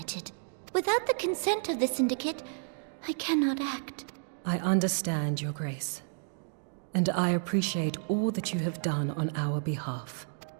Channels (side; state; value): left; silent; digital silence